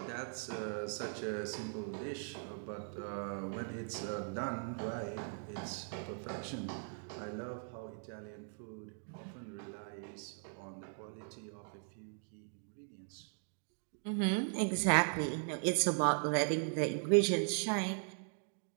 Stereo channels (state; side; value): silent; left; 52 dB below the other